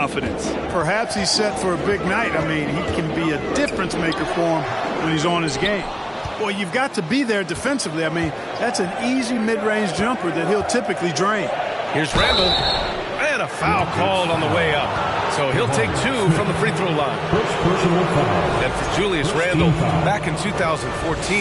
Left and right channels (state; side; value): identical; both; correlation 1.00